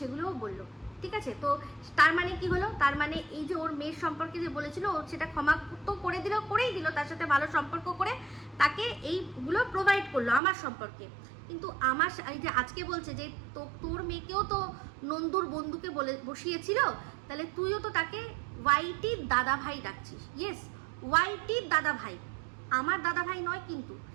সেগুলোও বললো, ঠিক আছে। তো তার মানে কি হলো, তার মানে এই যে ওর মেয়ের সম্পর্কে যে বলেছিল, ও সেটা ক্ষমা তো করেই দিল, তার সাথে ভালো সম্পর্ক করে তাকে এইগুলো প্রোভাইড করলো আমার সম্পর্কে। কিন্তু আমার এই যে আজকে বলছে যে তোর মেয়েকেও তো নন্দুর বন্ধুকে বলে বসিয়েছিল, তাহলে তুইও তো তাকে ওয়াইটির দাদা ভাই ডাকছিস। ইয়েস, ওয়াইটির দাদা ভাই, আমার দাদা ভাই নয়, কিন্তু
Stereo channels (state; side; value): drops out; left; at 10.4 s